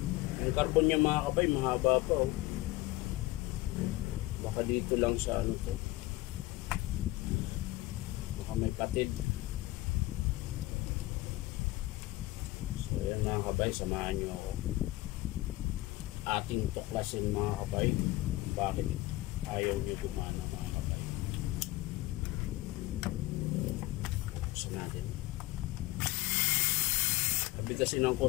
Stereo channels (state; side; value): quieter; right; 18.6 dB